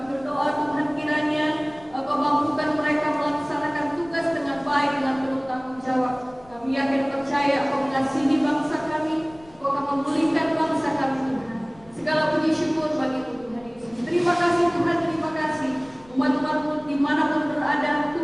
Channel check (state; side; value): noise; left; rumble, 26 dB below the sound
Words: berdoa Tuhan kiranya Engkau mampukan mereka melaksanakan tugas dengan baik, dengan penuh tanggung jawab. Kami yakin percaya Engkau mengasihi bangsa kami, Engkau akan memulihkan bangsa kami Tuhan. Segala puji syukur bagi-Mu Tuhan Yesus. Terima kasih Tuhan, terima kasih. Umat-umat-Mu dimanapun berada,